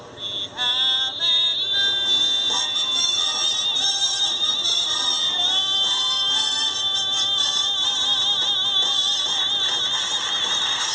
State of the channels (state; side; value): identical; both; correlation 1.00